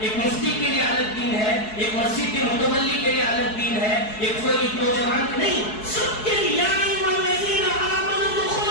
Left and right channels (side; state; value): right; late; 4.7 ms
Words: ایک مفتی کے لیے الگ دین ہے، ایک مسجد کے متولی کے لیے الگ دین ہے، ایک کوئی نوجوان کے نہیں، سب کے لیے۔ یا ایھا الذین آمنوا